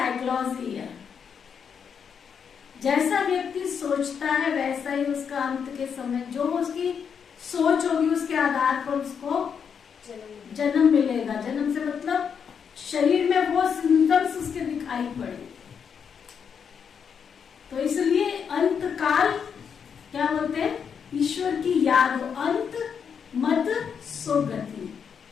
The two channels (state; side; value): quieter; right; 7.0 dB